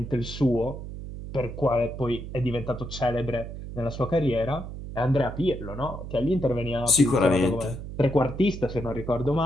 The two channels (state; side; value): noise; right; hum, 9 dB below the sound